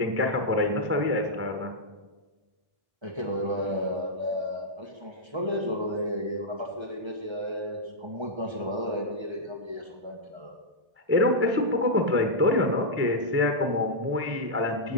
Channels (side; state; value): left; late; 1.3 ms